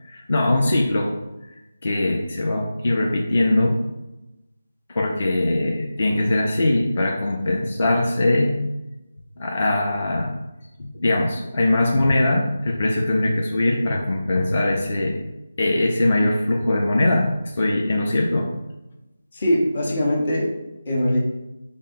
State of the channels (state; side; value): inverted; both; correlation -0.94